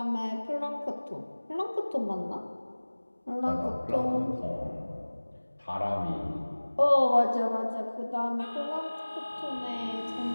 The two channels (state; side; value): inverted; both; correlation -1.00